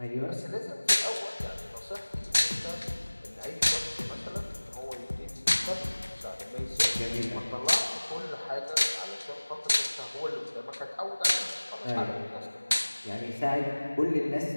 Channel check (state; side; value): inverted; both; correlation -1.00